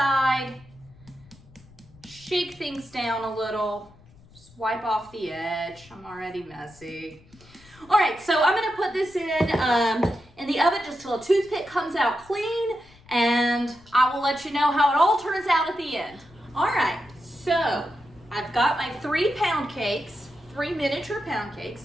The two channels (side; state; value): left; noise; rumble, 25 dB below the sound